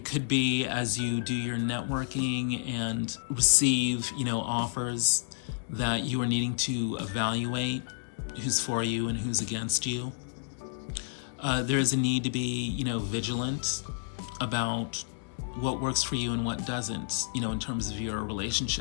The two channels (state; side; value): silent; right; digital silence